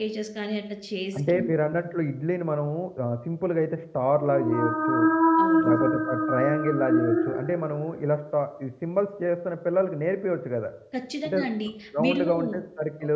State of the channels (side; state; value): both; identical; correlation 1.00